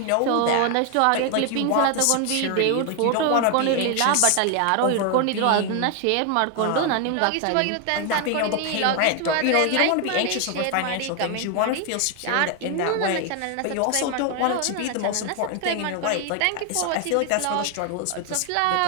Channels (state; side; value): different; both; correlation 0.01